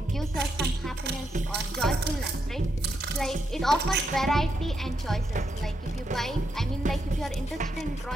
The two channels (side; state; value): both; normal; correlation 0.81